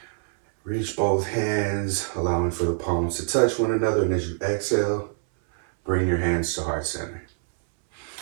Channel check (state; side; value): silent; left; 59 dB below the other